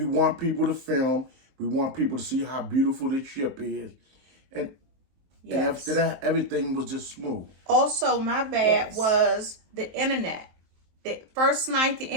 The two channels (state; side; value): late; left; 23 ms